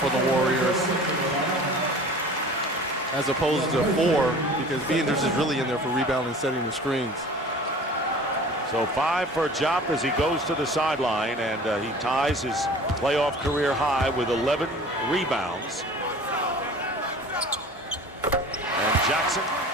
the Warriors, as opposed to 4, because Piétrus is really in there for rebounding and setting the screens. So 5 for Diop as he goes to the sideline, and he ties his playoff career high with 11 rebounds. And Jackson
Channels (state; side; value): normal; both; correlation 0.43